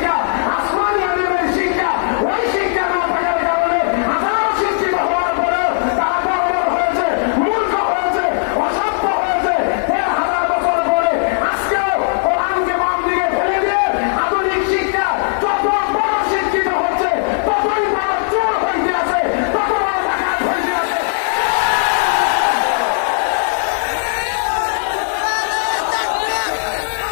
আসমানি আলিমের শিক্ষা। ওই শিক্ষা না থাকার কারণে হাজারো শিক্ষিত হওয়ার পরেও তারা বর্বর হয়েছে, মূর্খ হয়েছে, অসভ্য হয়েছে। ১,৫০০ বছর পরে আজকেও কোরআনকে বাম দিকে ফেলে দিয়ে আধুনিক শিক্ষা যত বড় শিক্ষিত হচ্ছে, ততই বড় চোর হইতে আছে, তত বড় ডাকাত হইতে আছে।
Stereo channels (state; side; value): silent; right; 68 dB below the other